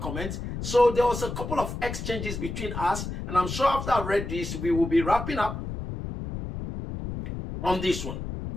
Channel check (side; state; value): left; noise; rumble, 6 dB below the sound